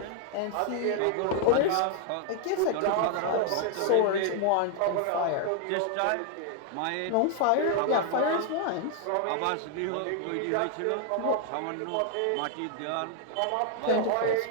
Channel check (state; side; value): different; both; correlation 0.00